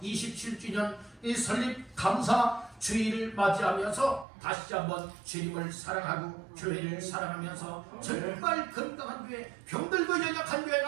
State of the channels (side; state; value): left; drops out; at 4.2 s